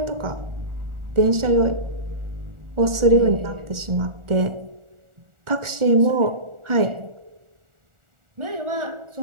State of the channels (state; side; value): late; left; 1.4 ms